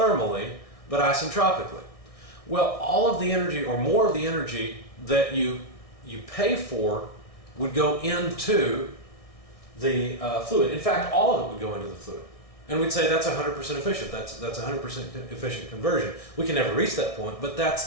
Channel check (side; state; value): right; late; 1.6 ms